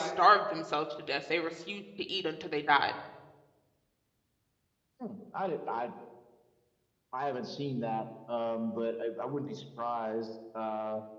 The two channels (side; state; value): both; identical; correlation 1.00